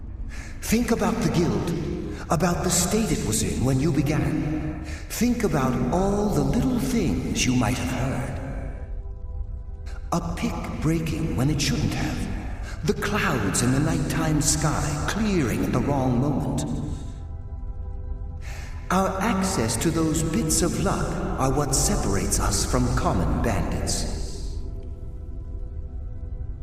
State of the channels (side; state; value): both; identical; correlation 1.00